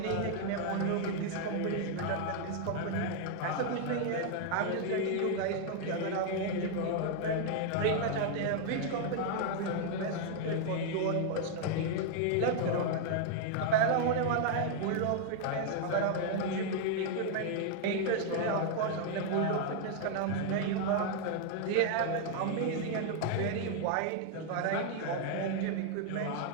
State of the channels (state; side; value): different; both; correlation 0.00